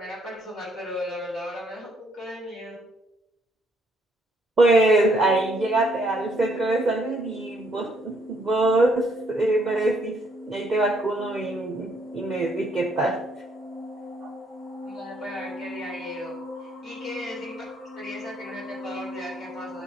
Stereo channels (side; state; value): both; normal; correlation 0.69